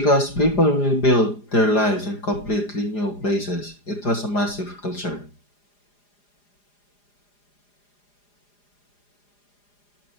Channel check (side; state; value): right; late; 4.9 ms